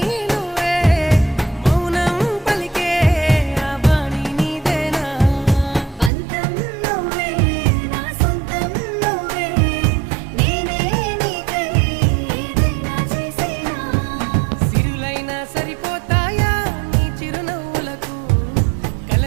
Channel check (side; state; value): left; drops out; at 6.1 s